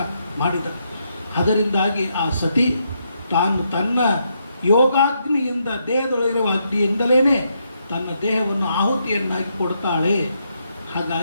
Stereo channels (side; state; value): both; inverted; correlation -0.78